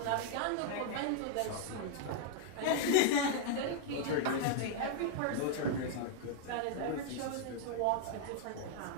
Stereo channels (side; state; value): both; different; correlation 0.00